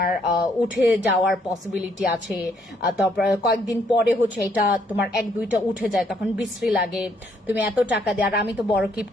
উঠে যাওয়ার পসিবিলিটি আছে, তারপর কয়েকদিন পরে হচ্ছে এটা তোমার 1-2টা উঠে যায়, তখন বিশ্রী লাগে, তুমি এত টাকা দিয়ে। আর আমি তো বড়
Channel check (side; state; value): both; normal; correlation 0.69